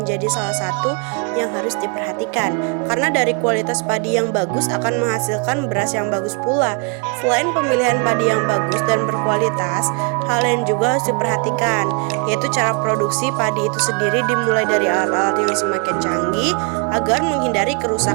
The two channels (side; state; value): left; quieter; 34.7 dB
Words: salah satu yang harus diperhatikan. Karena dari kualitas padi yang bagus akan menghasilkan beras yang bagus pula. Selain pemilihan padi yang bagus dan berkualitas, hal lain juga harus diperhatikan, yaitu cara produksi padi itu sendiri dimulai dari alat-alat yang semakin canggih agar menghindari